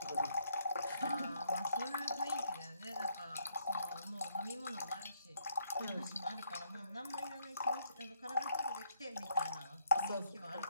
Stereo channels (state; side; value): inverted; both; correlation -0.72